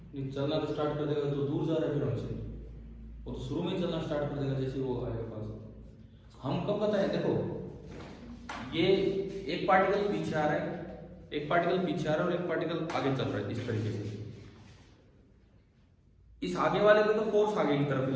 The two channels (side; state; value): both; identical; correlation 1.00